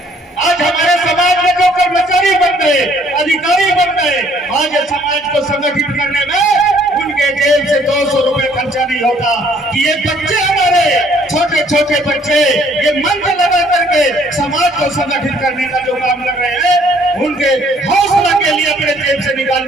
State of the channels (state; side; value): normal; both; correlation 0.61